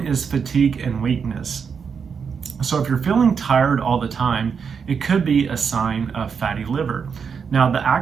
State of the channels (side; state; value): left; quieter; 6.3 dB